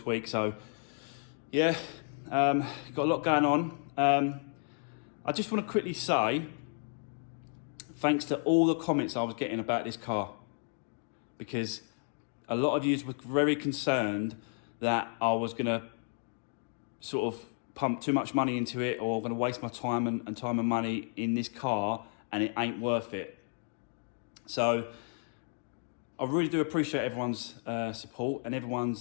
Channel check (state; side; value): silent; right; 56 dB below the other